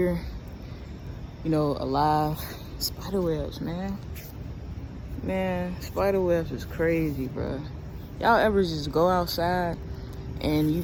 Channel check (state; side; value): identical; both; correlation 1.00